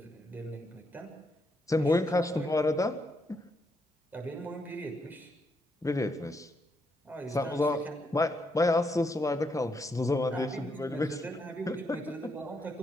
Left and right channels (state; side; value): normal; both; correlation 0.78